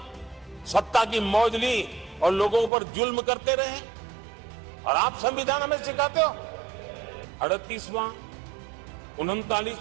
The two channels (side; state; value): left; drops out; at 2.7 s